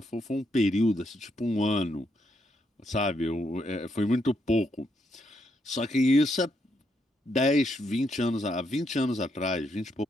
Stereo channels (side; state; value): both; normal; correlation 0.77